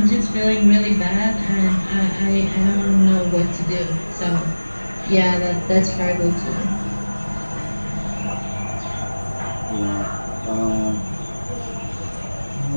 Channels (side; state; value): both; inverted; correlation -1.00